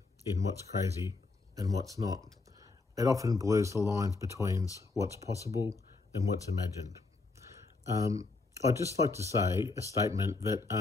in what's crazy and what's not. It often blurs the lines between what's possible and what's imagined. I'd just like to say a statement that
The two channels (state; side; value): quieter; right; 3.8 dB